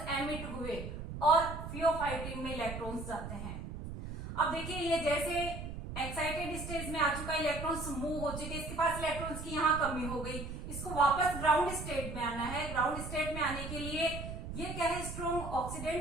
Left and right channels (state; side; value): noise; right; rumble, 8 dB below the sound